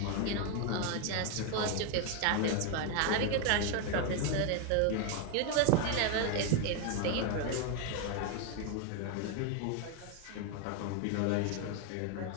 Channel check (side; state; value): both; different; correlation 0.01